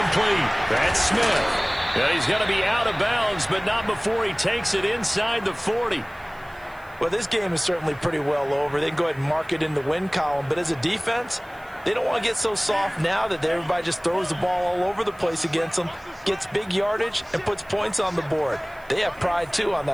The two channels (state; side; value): noise; right; hiss, 28 dB below the sound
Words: That's Smith. And he's going to be out of bounds, but not before he takes it inside the 40. Well, this game is certainly pretty well over. They can go ahead and mark it in the win column. But as a defense, they don't want to get so soft now that everybody just throws the ball all over the place against them, gets big yardage, and puts points on the board. They have pride, too, on